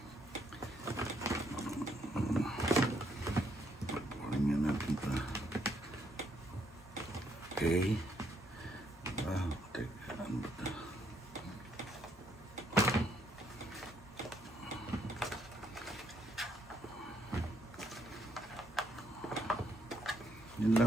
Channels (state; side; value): normal; both; correlation 0.72